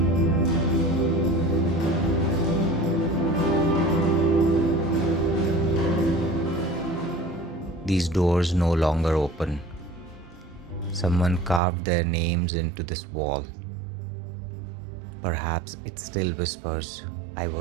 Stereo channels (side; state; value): left; drops out; at 11.6 s